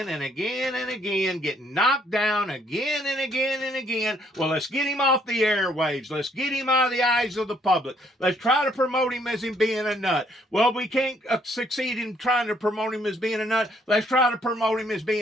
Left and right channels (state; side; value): normal; both; correlation 0.67